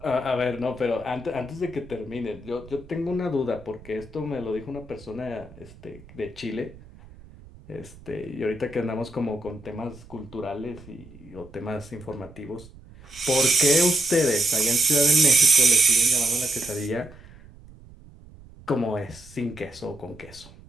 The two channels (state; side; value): noise; right; rumble, 21 dB below the sound